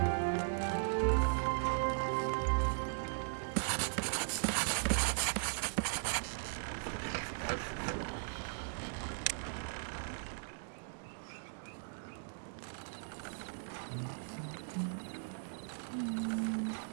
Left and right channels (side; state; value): left; silent; digital silence